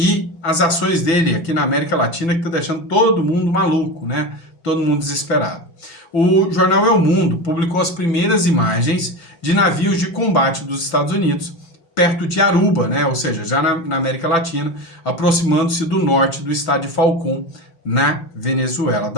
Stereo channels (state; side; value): late; right; 6.0 ms